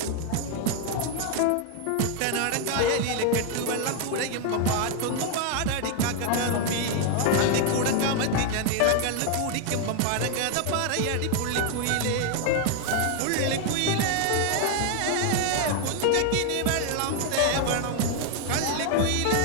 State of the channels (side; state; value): both; different; correlation 0.00